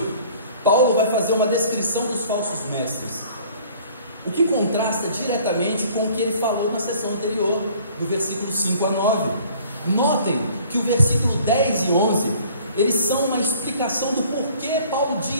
Paulo vai fazer uma descrição dos falsos mestres, o que contrasta diretamente com o que ele falou na sessão anterior, do versículo 5 a 9. Notem que o versículo 10 e 11, eles são uma explicação do porquê Paulo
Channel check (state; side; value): inverted; both; correlation -0.53